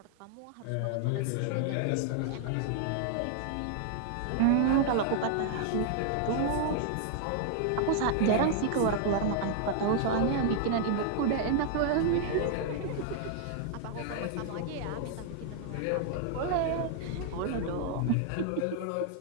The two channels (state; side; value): different; both; correlation 0.00